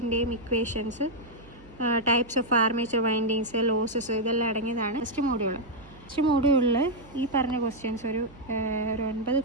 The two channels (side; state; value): right; noise; hum, 22 dB below the sound